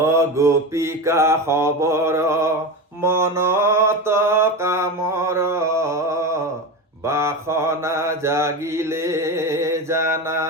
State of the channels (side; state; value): both; normal; correlation 0.22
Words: গোপিকা খবৰ মনত কামৰ বাসনা জাগিলে জানা